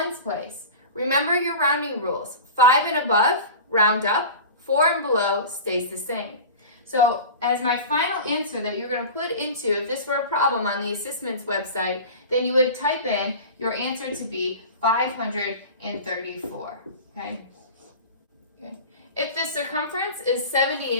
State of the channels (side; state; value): both; inverted; correlation -0.33